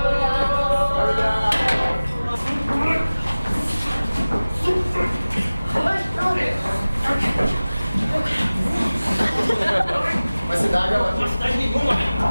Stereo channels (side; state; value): both; inverted; correlation -0.98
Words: Uma cidade, ela... Uma cidade nenhuma.